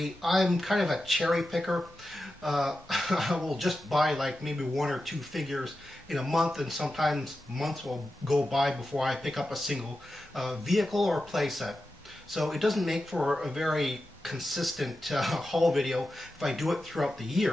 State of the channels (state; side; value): normal; both; correlation 0.91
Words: I'm kind of a cherry picker. I will just buy like maybe one or two figures in a month, and sometimes months will go by before I pick up a single vehicle or playset. So it doesn't make for a very consistent haul video if I do it throughout the